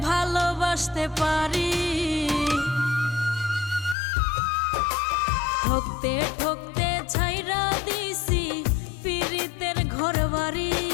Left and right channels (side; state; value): right; drops out; at 4.0 s